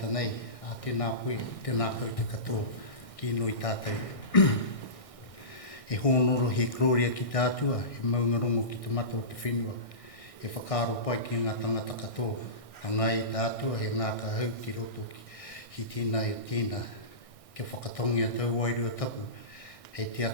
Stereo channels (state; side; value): late; right; 1.6 ms